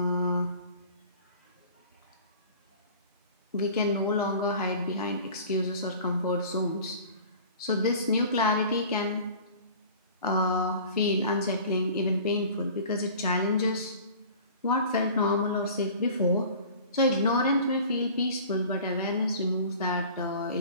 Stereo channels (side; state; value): both; inverted; correlation -0.43